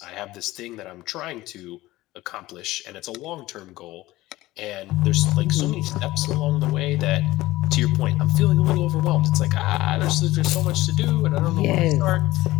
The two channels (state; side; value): quieter; right; 17.6 dB